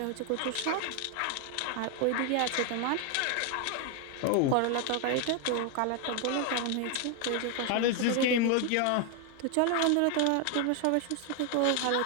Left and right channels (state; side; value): different; both; correlation 0.01